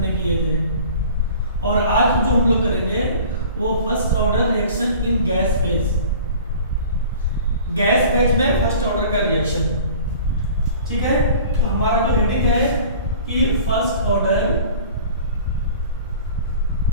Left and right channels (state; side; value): inverted; both; correlation -0.44